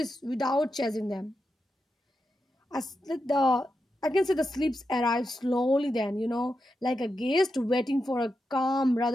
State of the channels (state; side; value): normal; both; correlation 0.87